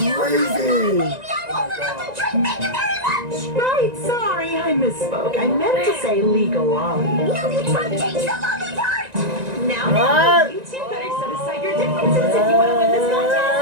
crazy! Maybe I'm old enough to drink. Thank you very much! Right, sorry, I misspoke. I meant to say legal lolly. No, you tried to change the lolly part! Now, you two better set aside your differences if you want to win this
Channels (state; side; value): late; left; 1.9 ms